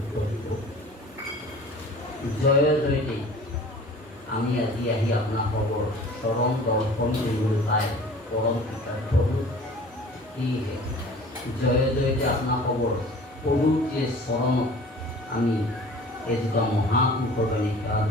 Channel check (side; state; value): both; normal; correlation 0.45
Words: দিব জয় জয়তে আমি আজি আহি আপোনালোকৰ চৰণ দৰ্শন কৰিবলৈ পাই পৰম কৃতাৰ্থ সেয়েহে জয় জয়তে আপোনালোকৰ পবিত্ৰ চৰণত আমি এজোপা মহাপুৰুষৰ সেৱা